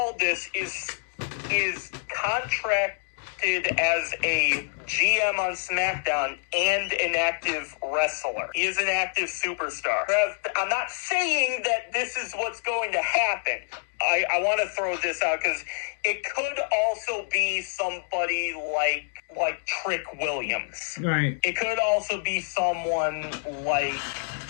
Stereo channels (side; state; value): right; silent; digital silence